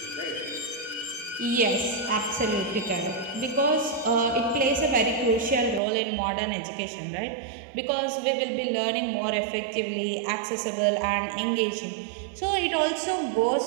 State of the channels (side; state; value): left; drops out; at 5.8 s